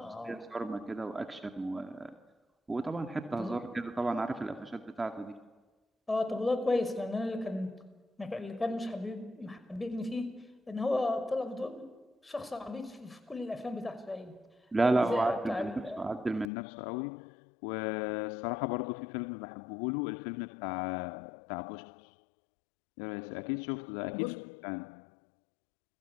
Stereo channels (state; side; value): drops out; right; at 16.5 s